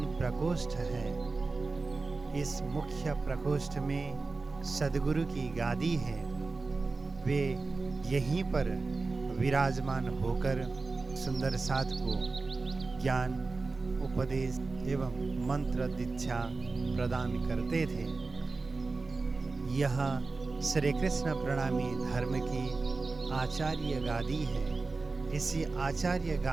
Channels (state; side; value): quieter; left; 3.8 dB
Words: प्रकोष्ठ है। इस मुख्य प्रकोष्ठ में सद्गुरु की गादी है। वे यहीं पर विराजमान होकर सुंदर साध को ज्ञान, उपदेश एवं मंत्र दीक्षा प्रदान करते थे। यह श्री कृष्ण प्रणामी धर्म की आचार्य गादी है। इसी आचार्य